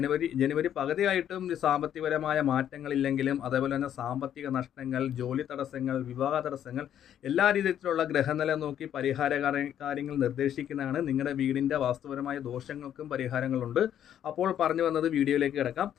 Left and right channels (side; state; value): right; quieter; 10.2 dB